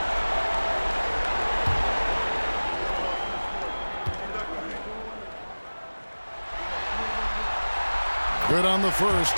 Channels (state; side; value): inverted; both; correlation -1.00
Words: Good on the first,